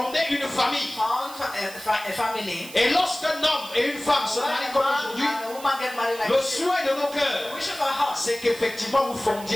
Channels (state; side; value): noise; right; hiss, 16 dB below the sound